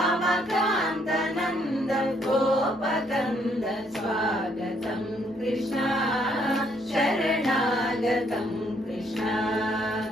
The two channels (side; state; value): both; normal; correlation 0.69